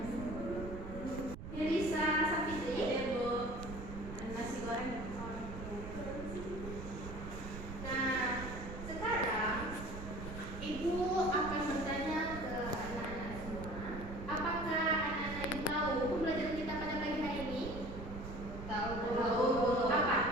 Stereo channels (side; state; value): right; noise; rumble, 9 dB below the sound